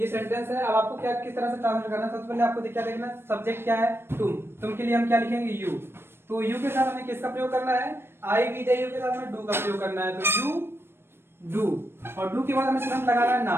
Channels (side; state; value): left; late; 0.12 ms